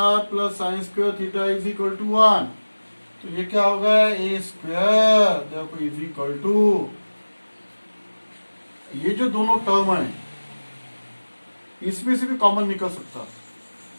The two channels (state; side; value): inverted; both; correlation -1.00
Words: plus sine square theta is equal to 1। तो ये क्या होगा, ए स्क्वायर देखो इज इक्वल टू, ये जो दोनों टर्म है इसमें से भी कॉमन निकल सकता।